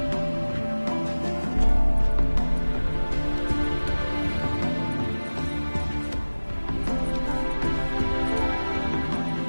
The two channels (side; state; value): both; inverted; correlation -1.00